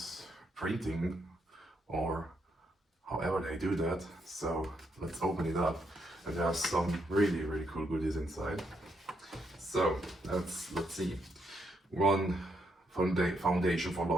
printing, or however they do that. So let's open it up, and there are some really cool goodies inside. So let's see. One Foundation for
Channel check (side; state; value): both; normal; correlation 0.77